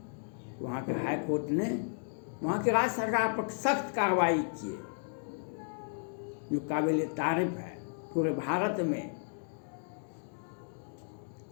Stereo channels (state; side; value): silent; right; digital silence